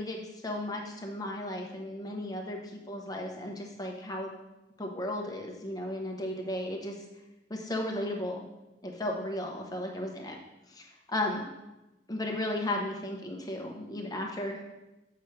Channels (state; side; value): normal; both; correlation 0.42